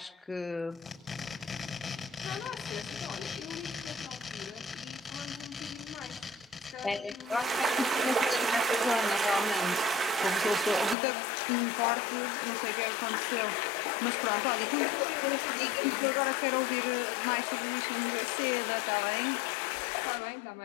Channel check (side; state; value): right; drops out; at 11.0 s